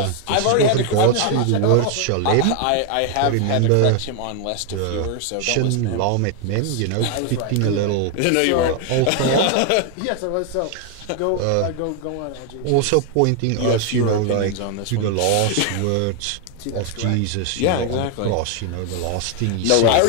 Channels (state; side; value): different; both; correlation 0.00